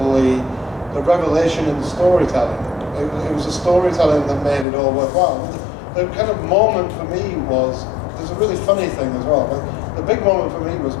the revelation in the storytelling. It was the storytelling that made it all worthwhile. The kind of moment for me was, there's a really funny thing as well, but the big moment for me was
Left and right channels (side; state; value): right; drops out; at 4.7 s